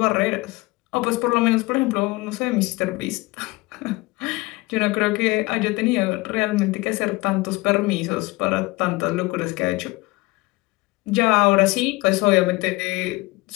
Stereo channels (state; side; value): quieter; right; 22.4 dB